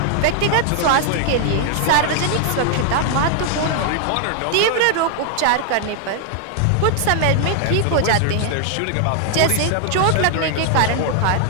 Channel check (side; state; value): both; different; correlation 0.00